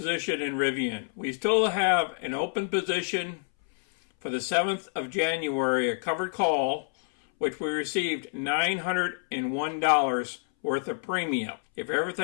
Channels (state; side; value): silent; right; 60 dB below the other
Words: in Rivian. We still have an open position for the 7th of January, a covered call, which we received $901 worth of premium. If